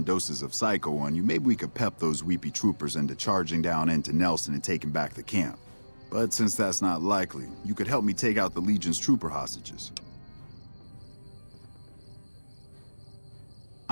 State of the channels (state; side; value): inverted; both; correlation -1.00